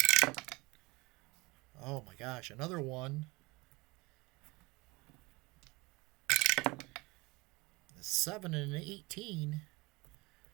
Oh my gosh, another one. 7 and 18.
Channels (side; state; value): left; quieter; 23.8 dB